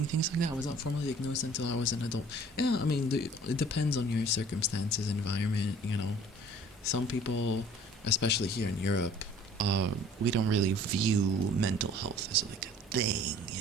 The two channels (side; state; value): both; normal; correlation 0.51